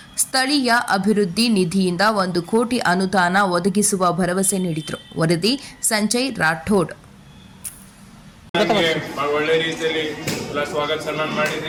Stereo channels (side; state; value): both; identical; correlation 1.00